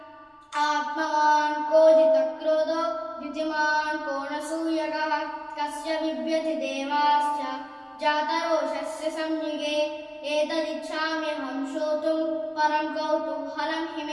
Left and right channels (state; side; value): identical; both; correlation 1.00